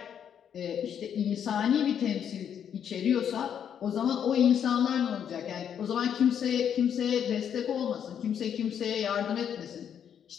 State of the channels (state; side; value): quieter; right; 8.6 dB